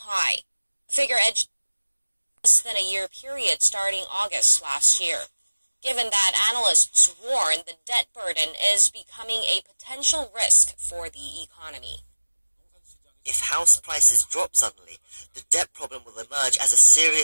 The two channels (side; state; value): both; inverted; correlation -1.00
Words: The figure edged less than a year period starting August last year. Given that analysts warn the debt burden is becoming a potential risk for the economy. If house prices drop suddenly, the debt problem will emerge as a